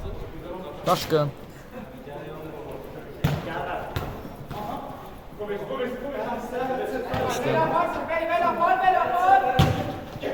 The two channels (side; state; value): both; identical; correlation 1.00